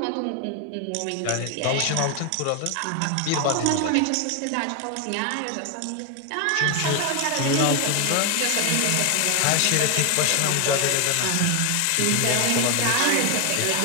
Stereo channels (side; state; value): both; different; correlation 0.01